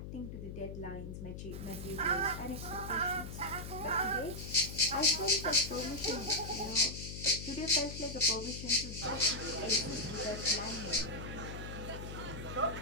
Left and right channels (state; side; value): noise; left; hum, 8 dB below the sound